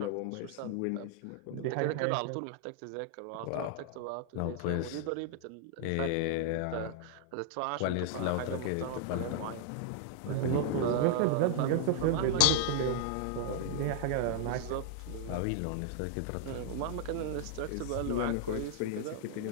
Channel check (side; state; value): both; different; correlation -0.01